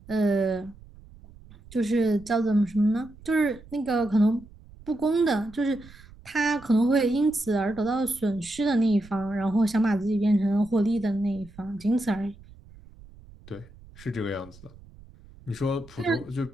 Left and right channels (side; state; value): right; noise; rumble, 22 dB below the sound